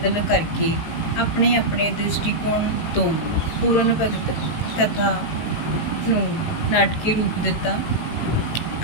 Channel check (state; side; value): late; right; 18 ms